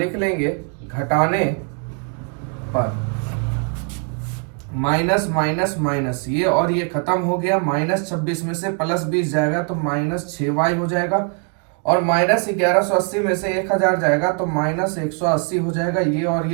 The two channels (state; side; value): quieter; left; 39.4 dB